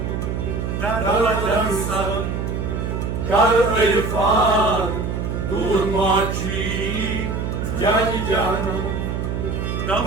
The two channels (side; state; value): right; noise; hum, 2 dB below the sound